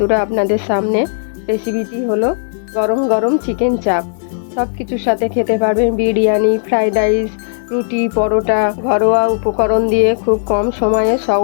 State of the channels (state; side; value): silent; right; digital silence